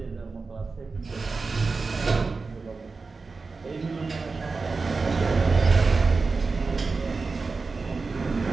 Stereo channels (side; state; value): left; quieter; 4.2 dB